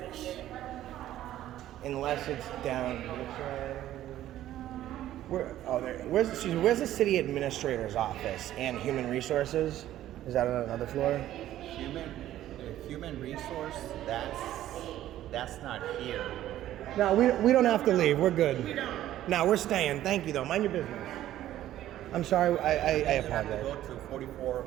Unless it's down this way. Where's the city administrator's office and human resources? Is that on another floor? Human resource, that's not here. No, we don't have to leave. We're good. We don't. No, we're staying. Thank you, though. Mind your business. I'm sorry. I You have to go apologize. to 44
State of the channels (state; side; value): quieter; left; 13.1 dB